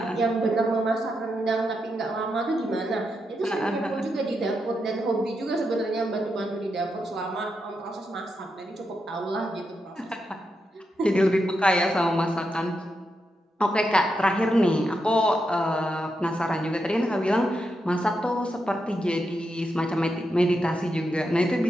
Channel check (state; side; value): normal; both; correlation 0.85